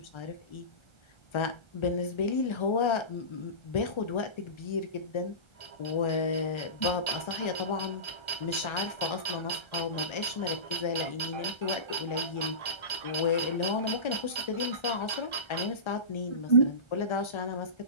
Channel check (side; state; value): right; late; 1.3 ms